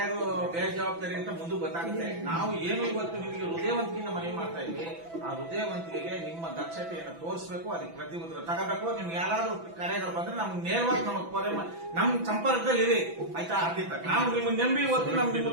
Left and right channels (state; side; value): late; left; 6.0 ms